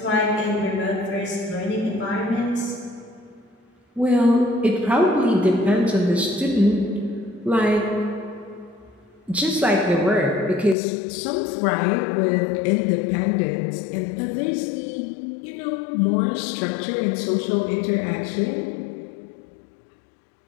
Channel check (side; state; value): right; drops out; at 10.8 s